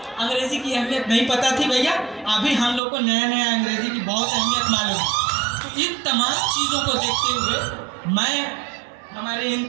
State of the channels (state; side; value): drops out; left; at 2.8 s